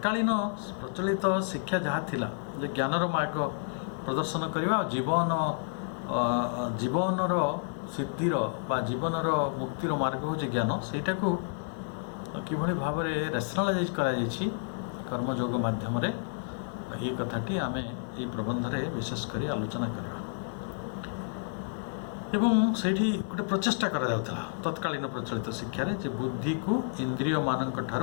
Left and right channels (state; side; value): silent; right; digital silence